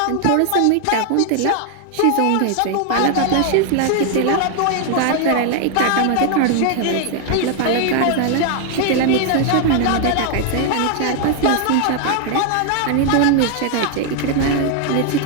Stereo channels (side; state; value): both; different; correlation 0.00